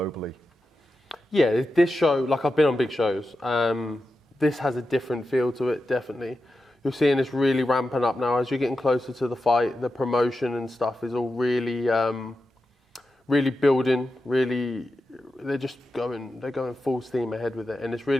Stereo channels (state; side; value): normal; both; correlation 0.90